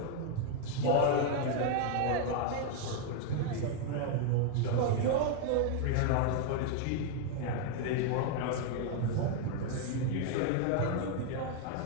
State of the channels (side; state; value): both; different; correlation 0.00